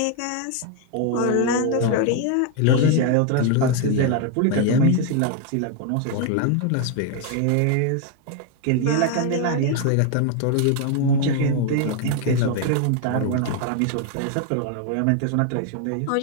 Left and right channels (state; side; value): different; both; correlation 0.01